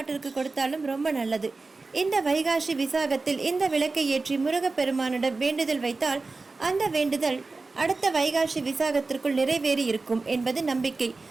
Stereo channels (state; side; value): quieter; left; 3.7 dB